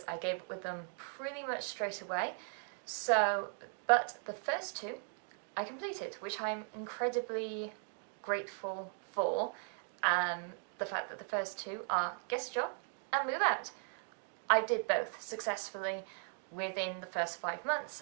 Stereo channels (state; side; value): silent; left; 52 dB below the other